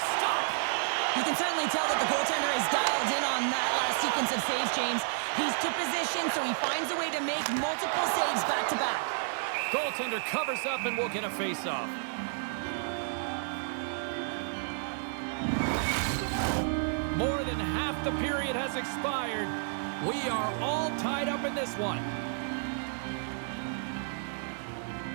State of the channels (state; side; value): silent; left; digital silence